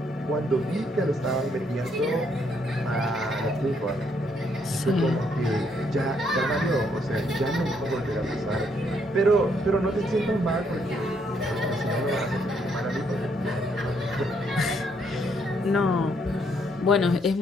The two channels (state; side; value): normal; both; correlation 0.72